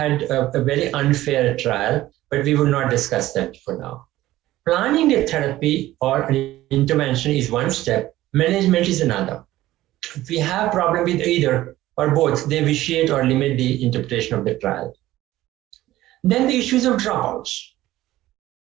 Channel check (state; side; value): quieter; left; 15.6 dB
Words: a very unfair trial, but we will not discuss that for now. Planning a therapy or an intervention is one step, management is another. If we have problem with either or both, they vitiate or limit the interpretation of the trial. Then the issues of dropouts.